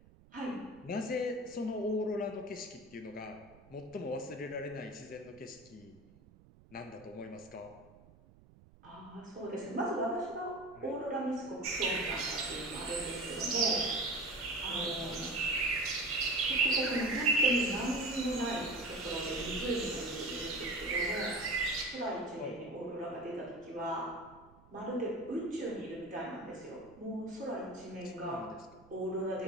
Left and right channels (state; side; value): noise; right; rumble, 24 dB below the sound